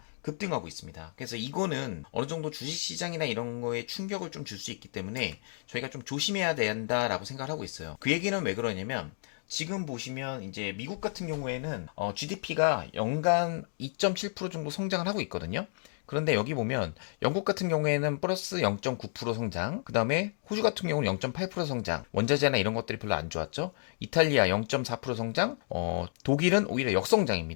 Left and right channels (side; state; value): right; silent; digital silence